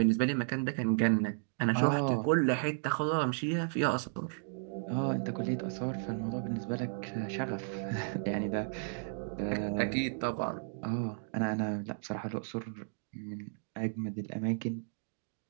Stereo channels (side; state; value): left; silent; digital silence